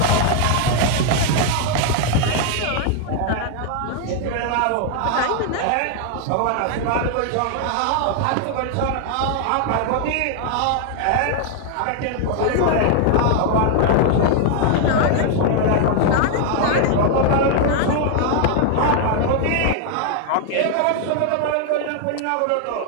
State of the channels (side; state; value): both; different; correlation 0.00